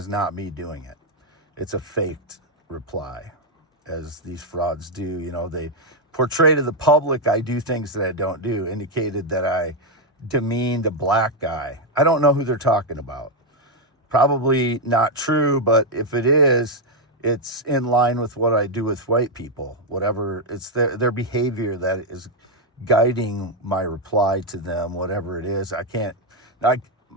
not me doing it. It's a faked reply, as these frauds do. They portray to the public I do things that I don't do, indicated that I demeaned a black guy. I don't know who they're talking about. Probably not true, but if it is, it's in line with what I do with white people. Whatever, it's their behavior that is guiding my reply to them, whatever it is. My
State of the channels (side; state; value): both; normal; correlation 0.02